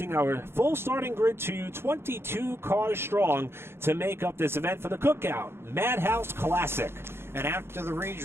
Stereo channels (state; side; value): late; left; 0.12 ms